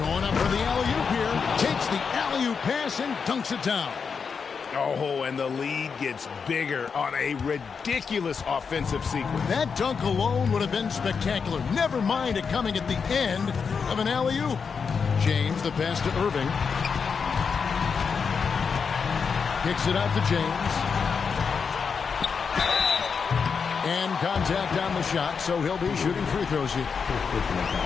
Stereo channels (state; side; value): quieter; right; 5.8 dB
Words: up for the alley-oop here. Takes the alley-oop pass and dunks it down. Oh, and the lead gets bigger on a ridiculous offensive sequence. That dunk alone would have been spectacular. Never mind it coming at the end of an alley-oop. James, the pass to Irving. Kicks it out to James. And contact on the shot, so he'll be shooting free throws here.